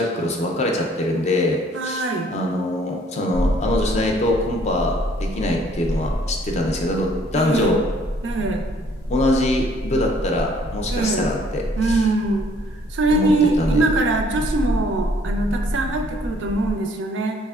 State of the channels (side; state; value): both; normal; correlation 0.61